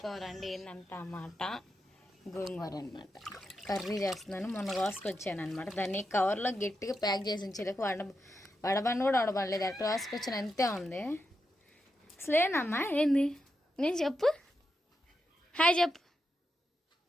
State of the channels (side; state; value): both; normal; correlation 0.86